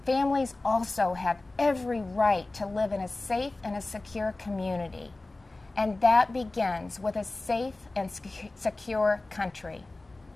Families also have every right to live in a safe and a secure community, and that begins with a safe and secure country.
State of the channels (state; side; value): quieter; right; 3.0 dB